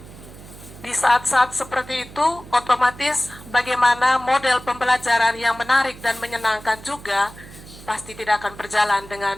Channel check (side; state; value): right; noise; hum, 18 dB below the sound